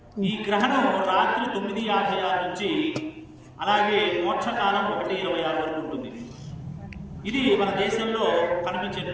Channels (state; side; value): identical; both; correlation 1.00